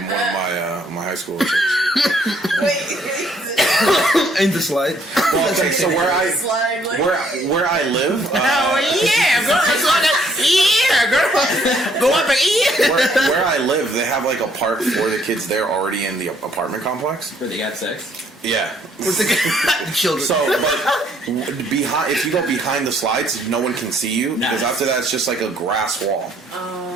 my high school chicks. In the slide. Well, okay, so where I live, yeah, girl. Yeah, girl. Go up and where I live, they have like a park for the kids there already in the apartment complex. Where they got sex. Yeah. With the children. So, but behind, if you go behind the slides, no one can see you because Nice. after that, it's just like a grass wall.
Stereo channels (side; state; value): both; normal; correlation 0.66